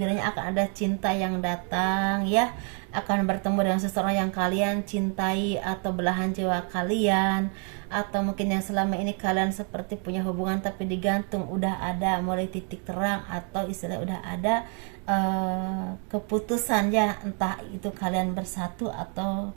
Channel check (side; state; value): left; quieter; 39.7 dB